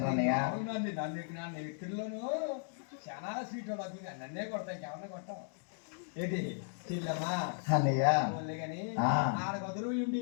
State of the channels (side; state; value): right; silent; digital silence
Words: అన్నయ్య నన్ను వ్యక్తుల్లోనూ చాలా స్వీట్ నన్నే కొడతాను ఇంకెవరన్నా కొట్టాం ఏంటి చెల్లమ్మా అన్నయ్య కానీ ఆడ గదులు